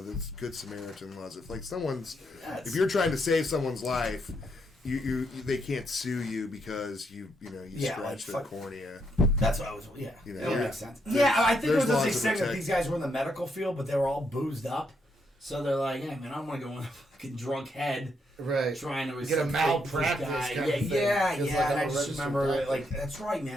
that's Good Samaritan laws. If like if you're trying to save someone's life, you they can't sue you because you scratched their cornea. That's what I was. Yeah, that makes sense. I think it was just saying that these guys were in the medical field, but they were all boozed up. So they're like, hey, man, I don't want to go in a fucking drunk head. Right. Trying to get a malpractice guy. Yeah. And I just remember, like, that's right,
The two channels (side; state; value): both; normal; correlation 0.77